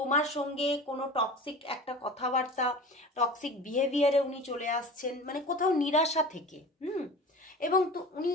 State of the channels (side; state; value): both; normal; correlation 0.36